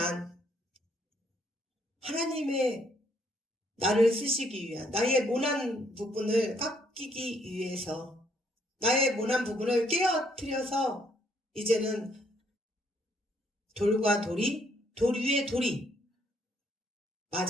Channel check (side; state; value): both; normal; correlation 0.69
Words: 하나님의 나를 쓰시기 위한 나의 모난 부분을 깎이기 위해서 나의 모난 부분을 깨어뜨려서 이제는 돌과 돌이 돌 위에 돌이